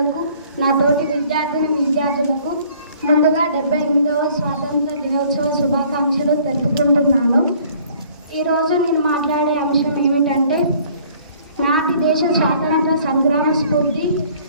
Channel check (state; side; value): inverted; both; correlation -0.56